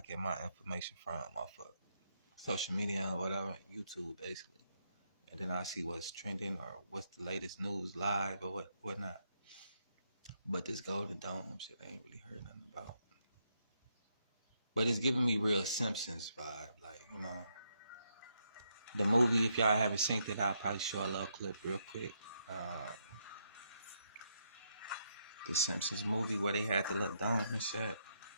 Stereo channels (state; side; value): inverted; both; correlation -0.77